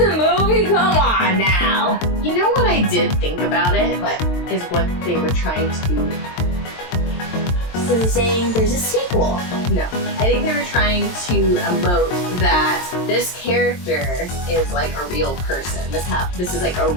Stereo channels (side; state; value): right; late; 23 ms